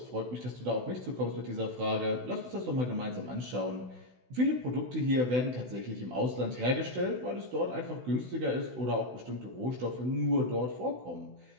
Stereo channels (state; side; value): late; left; 16 ms